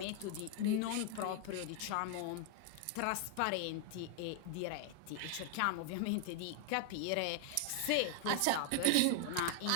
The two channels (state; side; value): different; both; correlation 0.00